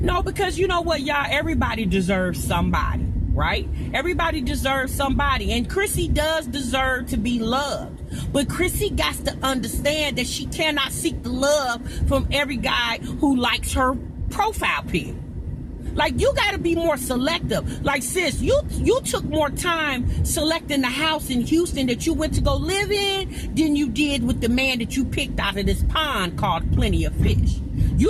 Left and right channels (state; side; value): identical; both; correlation 1.00